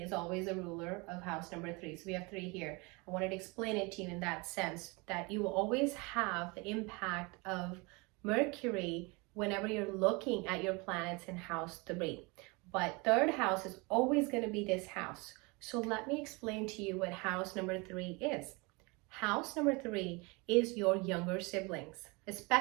always a ruler of house number 3. So we have 3 here. I wanted to explain it to you in that sense that you will always have the impact of Mercury whenever you're looking at your planets in house 3. But third house is always going to be this house. So let me explain to you what house number 3 is. House number 3 is your younger siblings,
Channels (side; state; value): left; quieter; 27.5 dB